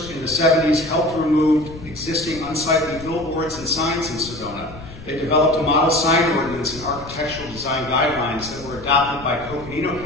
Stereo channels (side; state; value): left; noise; rumble, 16 dB below the sound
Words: in the 70s, helped remove existing unsightly billboards and signs in Sedona. They developed a model sign ordinance and architectural design guidelines that were adopted by Coconino